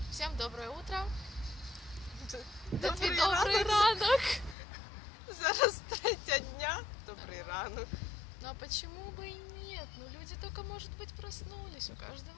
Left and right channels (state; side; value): drops out; right; at 4.5 s